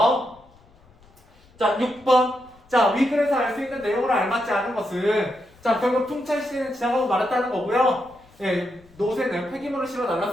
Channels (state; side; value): noise; left; rumble, 28 dB below the sound